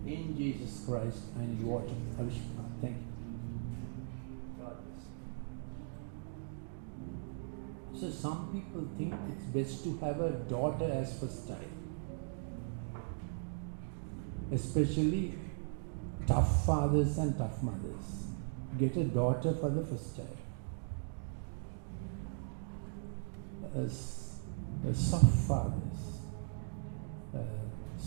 in Jesus Christ. I need water. Thank you. God bless. So some people think it's best to have a daughter as first child, especially tough fathers and tough mothers. get a daughter for the first child.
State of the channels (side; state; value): left; silent; digital silence